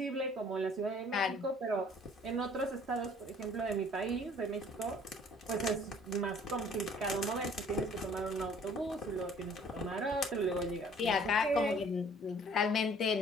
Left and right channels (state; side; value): normal; both; correlation 0.55